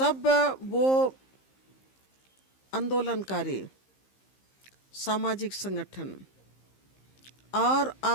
वो आंदोलनकारी सामाजिक संगठन और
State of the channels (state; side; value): late; right; 15 ms